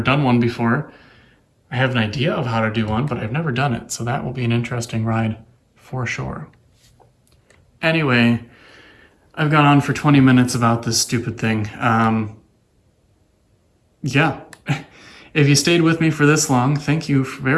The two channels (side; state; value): both; identical; correlation 1.00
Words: done one before. I have an idea of how to do one, but I've never done it. So that will be an interesting ride for sure. Anyway, I've gone on for 20 minutes about this stupid thing. Yeah. If you stayed with me for this long, thank you